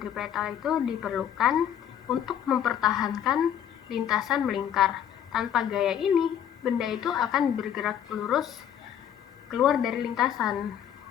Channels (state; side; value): quieter; right; 9.6 dB